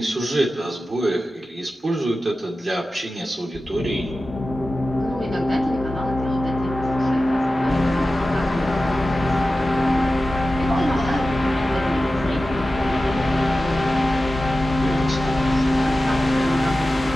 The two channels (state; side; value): normal; both; correlation 0.94